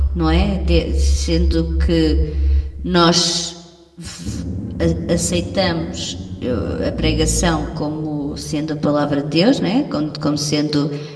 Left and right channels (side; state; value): both; identical; correlation 1.00